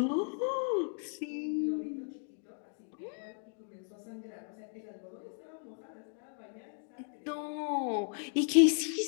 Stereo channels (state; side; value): silent; right; 54 dB below the other